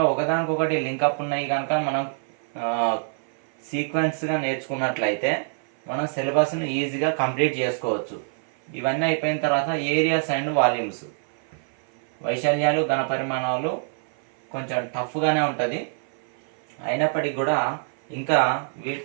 ఒకదానికొకటి లింకప్ ఉన్నాయి కనుక మనం సీక్వెన్స్గా నేర్చుకున్నట్లయితే మనం సిలబస్ను ఈజీగా కంప్లీట్ చేసుకోవచ్చు. ఇవన్నీ అయిపోయిన తర్వాత ఏరియాస్ అండ్ వాల్యూమ్స్, వైశాల్యాలు, ఘనపరిమాణాలు కొంచెం టఫ్గానే ఉంటుంది. అయినప్పటికీ కూడా ఇంకా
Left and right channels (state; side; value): silent; left; 55 dB below the other